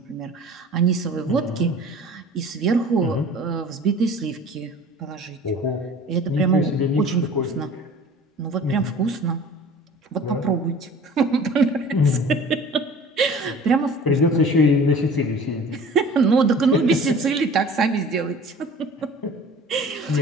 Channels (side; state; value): both; normal; correlation 0.44